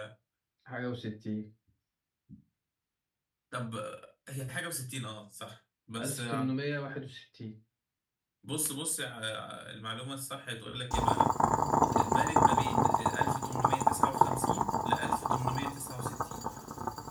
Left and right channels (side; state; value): both; identical; correlation 1.00